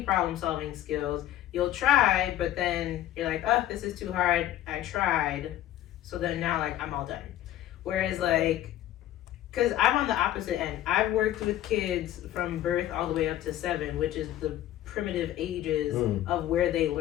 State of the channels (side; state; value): right; quieter; 13.0 dB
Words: problem solving skills, you'll try, but then you're like, oh, this is too hard. I tried. So then now like I'm all done. Whereas like, because I'm on the opposite end. I've worked with kids from birth all the way up to 7, which is the primitive ages of where they